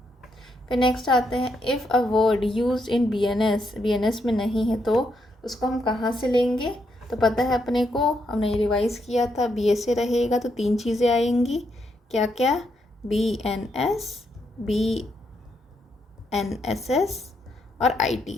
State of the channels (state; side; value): normal; both; correlation 0.78